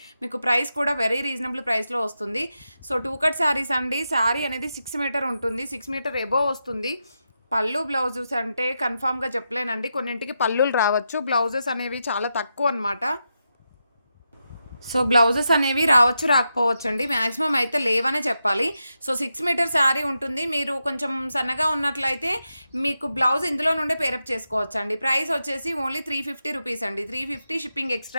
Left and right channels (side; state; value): both; inverted; correlation -0.87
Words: మీకు ప్రైస్ కూడా వెరీ రీజనబుల్ ప్రైస్లో వస్తుంది. సో టూ కట్ శారీస్ అండి. శారీ అనేది 6 మీటర్ ఉంటుంది, 6 మీటర్ ఎబోవ్ వస్తుంది. పళ్ళు బ్లౌజెస్ అంటే కన్ఫామ్గా చెప్పలేనండి, కొన్నింటికి పళ్ళులు రావచ్చు, బ్లౌజెస్ అనేవి చాలా తక్కువ అనమాట. సో బ్లౌజెస్ అనేవి రావచ్చు రాకపోవచ్చు అండి, మ్యాక్సిమం అయితే లేవనే చెప్పాలి. సో 6 మీటర్ శారీ ఉంటుంది. మీరు కొంచెం సన్నగా ఉన్నట్లయితే మీకు బ్లౌజ్ ఇందులో నుండే పేరప్ చేసుకోవచ్చు అండి. ప్రైస్ వచ్చేసి ఓన్లీ 350 రూపీస్ అండి. 350 షిప్పింగ్